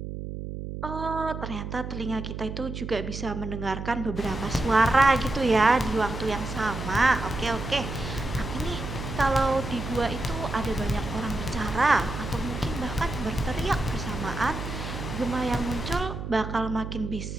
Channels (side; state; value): right; noise; hum, 7 dB below the sound